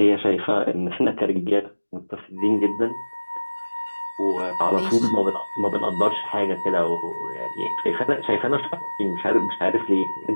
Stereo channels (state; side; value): inverted; both; correlation -1.00